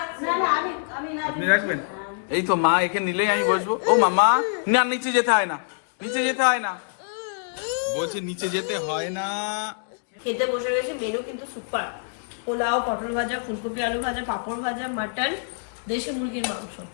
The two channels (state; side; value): silent; right; digital silence